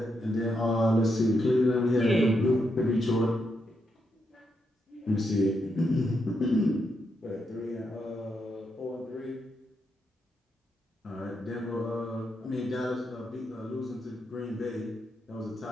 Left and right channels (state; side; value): normal; both; correlation 0.82